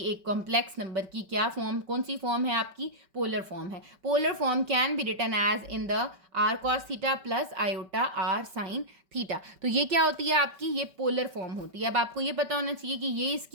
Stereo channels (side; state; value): left; late; 5.2 ms